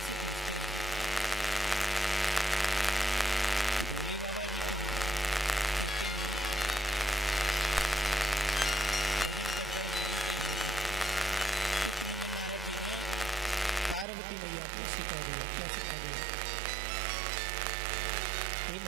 से पूछते हैं कि भोले बाबा जी कहाँ हैं। कहते हैं भजन कर रहे हैं, यहीं कहीं होंगे। इतने में नारद जी ने पार्वती मैया को सिखा दिया। क्या सिखा दिया? हे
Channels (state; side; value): drops out; left; at 14.1 s